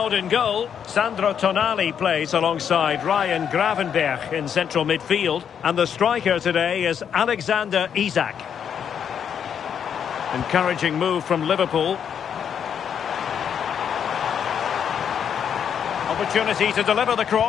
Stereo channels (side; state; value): right; quieter; 8.1 dB